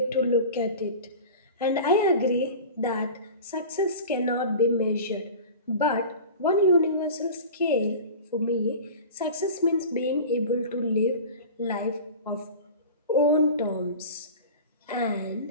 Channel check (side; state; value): both; inverted; correlation -0.36